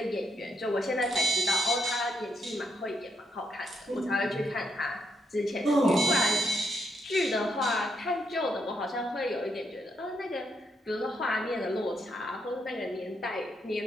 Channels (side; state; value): both; normal; correlation 0.78